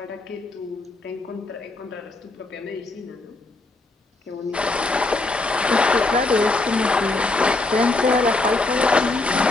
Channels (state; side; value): quieter; right; 3.2 dB